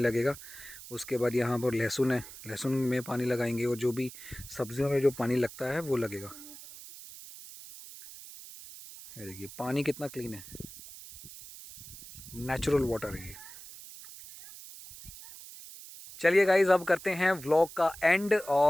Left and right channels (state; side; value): noise; right; hiss, 15 dB below the sound